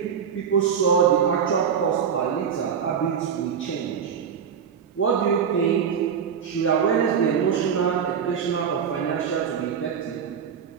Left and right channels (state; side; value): quieter; left; 7.4 dB